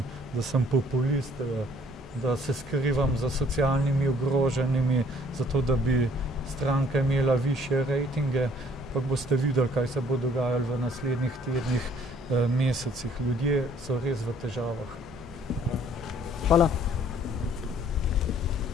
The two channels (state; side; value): normal; both; correlation 0.59